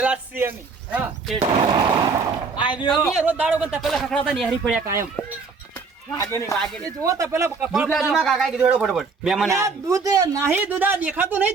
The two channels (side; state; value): left; quieter; 4.7 dB